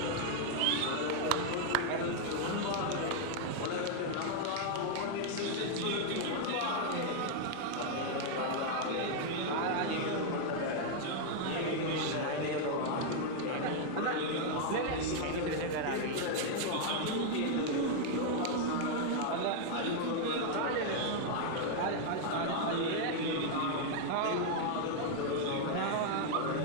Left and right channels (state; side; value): different; both; correlation 0.00